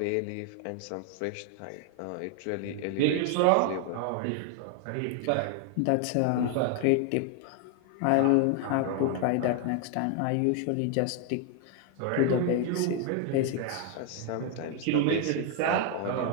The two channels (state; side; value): different; both; correlation 0.00